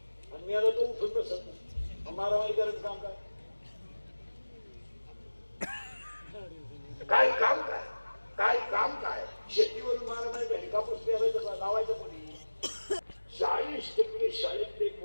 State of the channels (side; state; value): both; inverted; correlation -1.00